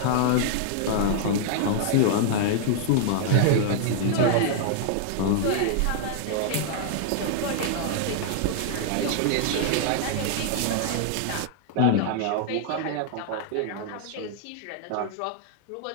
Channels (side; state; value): both; different; correlation -0.01